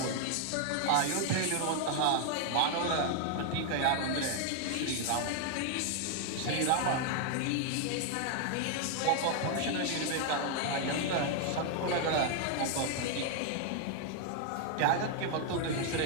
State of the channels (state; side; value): different; both; correlation 0.00